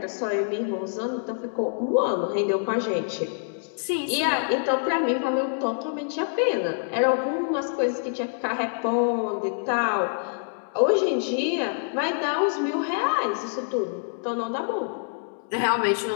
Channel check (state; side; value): silent; right; digital silence